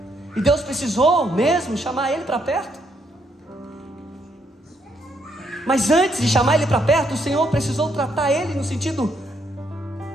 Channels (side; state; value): both; normal; correlation 0.74